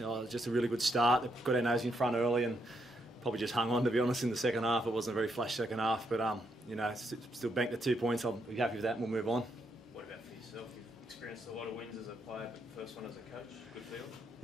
just a really good start. They got our nose in front early and probably just hung on, to be honest, in the second half. It wasn't a very flash second half, but still banked the 2 points. I'll be happy with that, and we'll move on. What about for yourself? You've experienced a lot of wins as a player, but the first one as a coach, good feel?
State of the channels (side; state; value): both; normal; correlation 0.78